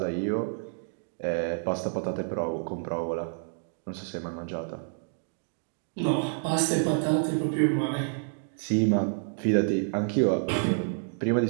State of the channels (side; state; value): left; silent; digital silence